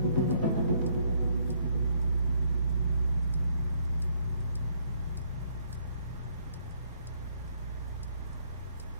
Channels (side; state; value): both; inverted; correlation -0.68